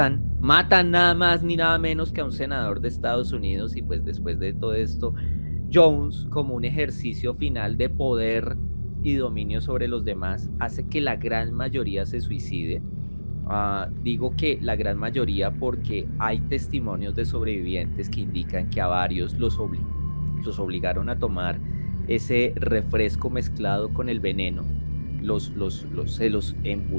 nada más ni nada menos que a un senador de Estados Unidos, y pues después de todo esto, Jones, como un ejercicio final de poder y dominio sobre los demás, hace que la gran mayoría se suicide. Digo que la gran mayoría porque hay testimonios de sobrevivientes que indican que a varios los obligaron a tomar ese refresco mezclado con el veneno, se los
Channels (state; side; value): inverted; both; correlation -1.00